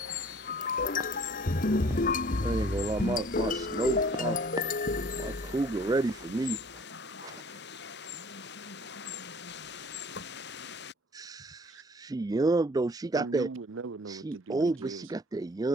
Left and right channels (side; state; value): both; normal; correlation 0.52